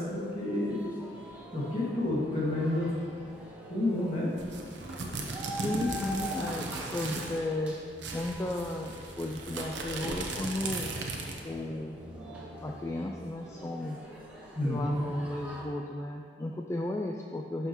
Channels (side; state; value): both; normal; correlation 0.72